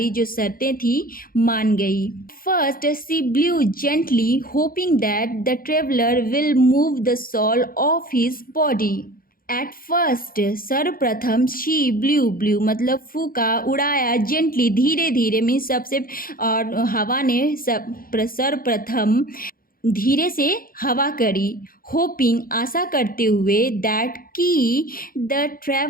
जो शर्तें थी मान गई। First she blew gently hoping that the traveller will move the shawl off his body. At first सर्वप्रथम, शी ब्लू ब्लू मतलब फूका, उड़ाया, जेंटली धीरे धीरे मीन्स सबसे, और हवा ने सर्वप्रथम धीरे से हवा करी, होपिंग आशा करते हुए, दैट की द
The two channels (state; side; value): late; right; 0.42 ms